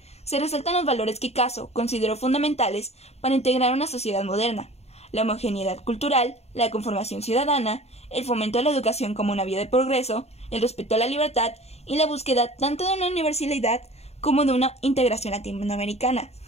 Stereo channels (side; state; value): right; late; 0.31 ms